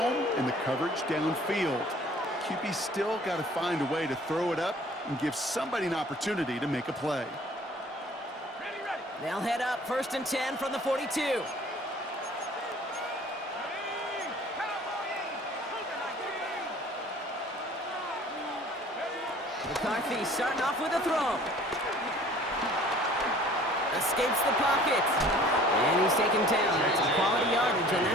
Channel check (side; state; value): both; normal; correlation 0.51